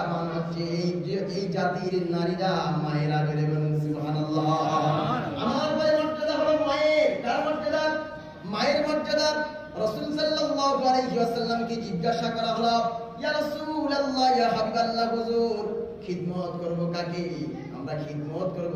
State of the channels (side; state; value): both; identical; correlation 1.00